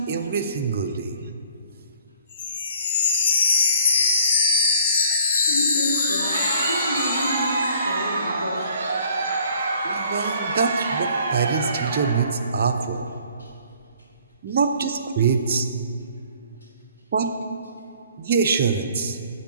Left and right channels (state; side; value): inverted; both; correlation -0.57